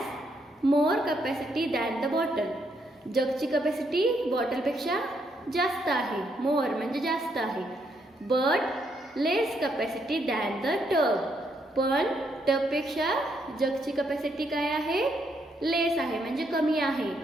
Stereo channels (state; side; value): normal; both; correlation 0.75